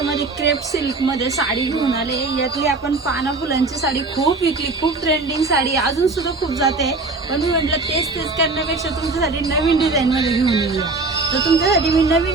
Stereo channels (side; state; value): left; quieter; 3.5 dB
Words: क्रेप सिल्क मध्ये साडी घेऊन आले। यातली आपण पाना फुलांची साडी खूप विकली, खूप ट्रेंडिंग साडी अजून सुद्धा खूप जाते, पण मी म्हटलं तेच करण्यापेक्षा तुमच्यासाठी नवीन डिझाईन मध्ये घेऊन येऊया। तर तुमच्यासाठी मी